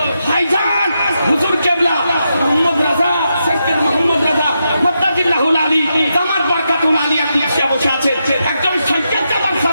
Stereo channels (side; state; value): both; inverted; correlation -0.85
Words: ভাইজান হুজুর কেবলা মোহাম্মদ রাজা, সৈয়দ মোহাম্মদ রাজা মাদ্দাজিল্লাহুল আলী দামাত বারকাতুল আলিয়া কুরসিয়া বসে আছে। একজন সৈয়দ জাদার